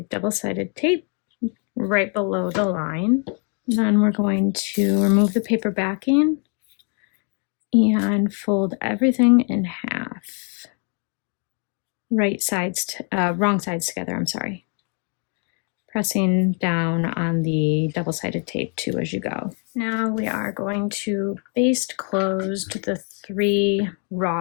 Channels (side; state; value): right; quieter; 39.5 dB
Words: double-sided tape right below the line. Then we're going to remove the paper backing and fold everything in half. Wrong sides together, I'm sorry. Pressing down on the double-sided tape too as you go. Now we are going to baste closed the 3